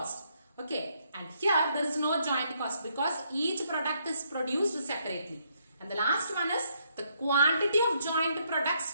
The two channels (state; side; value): inverted; both; correlation -0.72